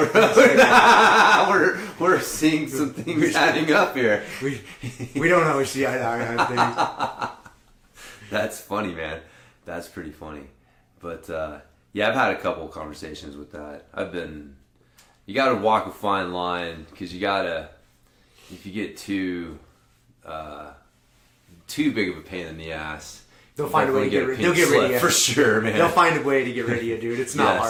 road? we're seeing some things adding up here. We don't always see eye to eye on things. That's funny, man. That's pretty funny. But yeah, I've had a couple of conversations with that. You got to walk a fine line because you got to, if you get too big of a pain in the ass, they'll find a way to get rid of you. For sure, man. They'll find a way to get rid of you, dude. It's not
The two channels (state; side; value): identical; both; correlation 1.00